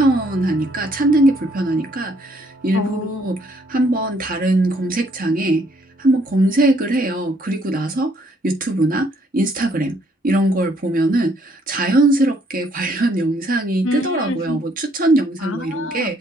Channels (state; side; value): normal; both; correlation 0.67